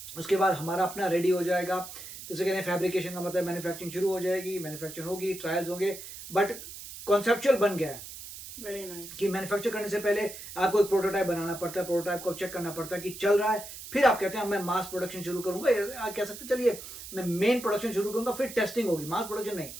उसके बाद हमारा अपना रेडी हो जाएगा। जैसे कहते हैं फैब्रिकेशन का मतलब मैन्युफैक्चरिंग शुरू हो जाएगी, मैन्युफैक्चरिंग होगी, ट्रायल्स होंगे, बट कॉन्सेप्चुअल बन गया है। Very nice. कि मैन्युफैक्चर करने से पहले आपको एक प्रोटोटाइप बनाना पड़ता है, प्रोटोटाइप को चेक करना पड़ता है कि चल रहा है, फिर आप कहते हैं मैं मास प्रोडक्शन शुरू करूंगा, या कह सकते चलिए मैं मेन प्रोडक्शन शुरू करूंगा, फिर टेस्टिंग होगी। मास प्रोडक्शन नहीं,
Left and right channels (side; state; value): right; noise; hiss, 12 dB below the sound